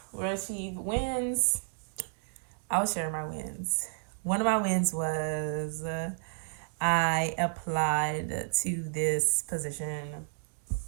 were achieved. Wins, I will share my wins. One of my wins was I applied to this position.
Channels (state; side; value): silent; left; 57 dB below the other